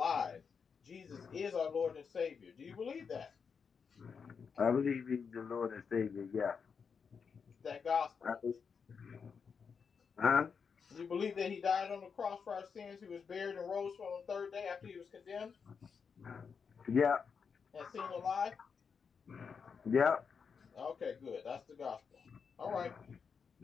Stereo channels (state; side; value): quieter; right; 6.0 dB